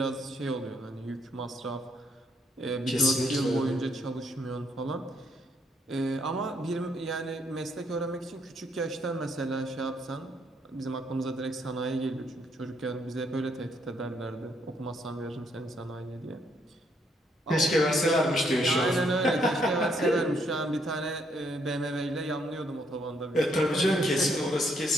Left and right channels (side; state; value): both; normal; correlation 0.72